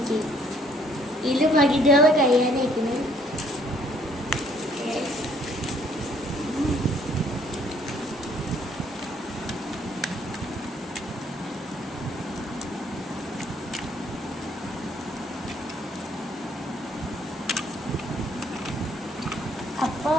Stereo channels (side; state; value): both; normal; correlation 0.64